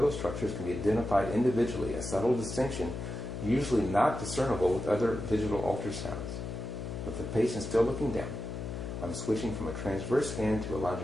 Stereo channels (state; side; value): noise; left; hum, 6 dB below the sound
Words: structures can be identified individually, a subtle distinction usually not discernible with other digital ultrasounds. With the patient still looking down, I'm switching from a transverse scan to a